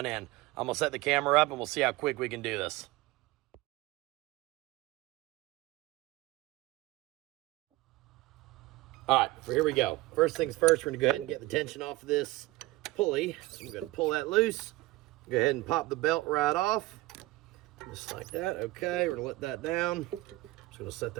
in. I'm going to set the camera up, and we'll see how quick we can do this. All right, so here we go. First things first, we're gonna go ahead and get the tension off of this pulley. So I'm gonna pull that loose. Go ahead and pop the belt right off. Just like that, okay. We're gonna let that down. Just gonna set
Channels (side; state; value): left; quieter; 19.6 dB